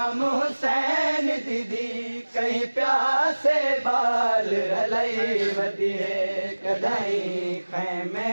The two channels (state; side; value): inverted; both; correlation -1.00